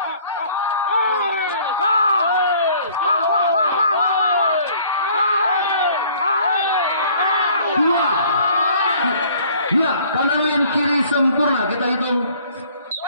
Dua, ya, kanan yang kiri sempurna, kita hitung.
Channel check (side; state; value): both; inverted; correlation -0.55